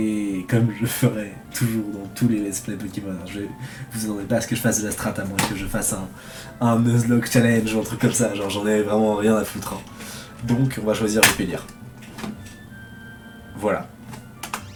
comme je ferai toujours dans tous les let's play Pokémon. Vous attendez pas à ce que je fasse de la strat, à moins que je fasse un Nuzlocke challenge ou un truc comme ça, genre j'en ai vraiment rien à foutre. Hein. Donc on va choisir Vipélière. Voilà.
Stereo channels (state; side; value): identical; both; correlation 1.00